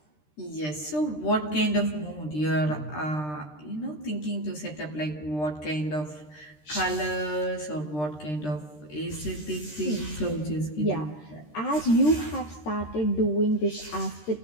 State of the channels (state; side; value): late; right; 13 ms